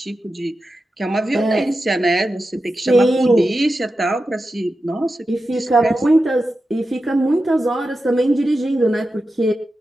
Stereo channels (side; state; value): both; normal; correlation 0.91